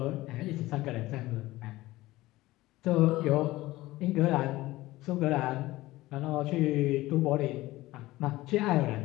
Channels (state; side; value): quieter; right; 18.0 dB